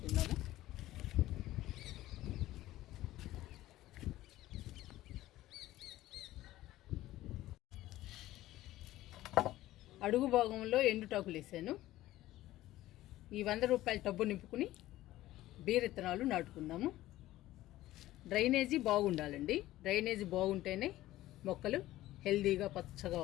అడుగు భాగంలో ఎండుటాకులు వేసాను. ఈ 100 రూపాయల టబ్బు నింపుకుని బీర విత్తనాలు నాటుకుందాము. డ్రైనేజీ బాగుండాలండి. డ్రైనేజీ బాగుంటేనే మొక్కలు హెల్దీగా పచ్చగా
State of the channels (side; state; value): right; quieter; 15.6 dB